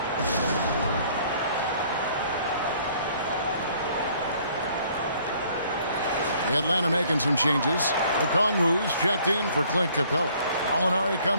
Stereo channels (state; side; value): inverted; both; correlation -0.59